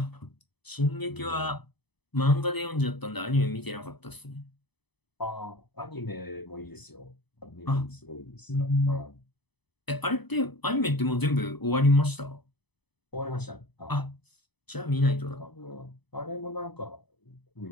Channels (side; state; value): right; late; 0.99 ms